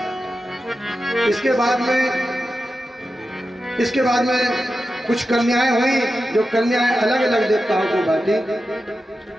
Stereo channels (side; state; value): both; normal; correlation 0.91